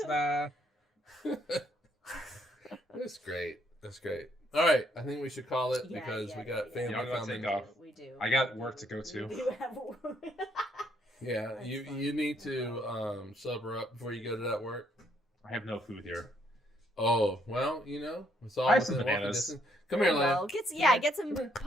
That's great. That's great. All right, I think we should call it because we got family coming. Take off. We do. I got work to go to. We do have work. Yeah, you need to sober up before you go to that work. I have no food here. Oh, well, it's all I have some within walking bananas. distance. Come here, Leia. Get some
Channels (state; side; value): normal; both; correlation 0.70